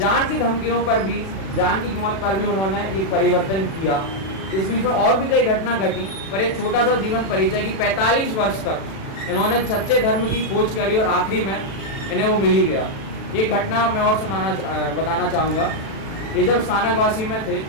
की धमकियों पर भी, जान की कीमत पर भी उन्होंने एक परिवर्तन किया। इस बीच में और भी कई घटना घटी, पर एक छोटा सा जीवन परिचय कि 45 वर्ष तक इन्होंने सच्चे धर्म की खोज करी और आखिरी में इन्हें वो मिल ही गया। एक घटना मैं और बताना चाहूँगा। ये जब स्थानकवासी में थे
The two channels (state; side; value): late; right; 36 ms